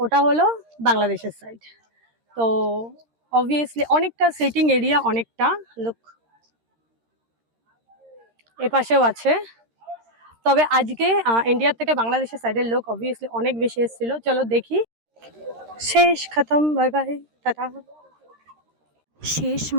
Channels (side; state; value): left; late; 13 ms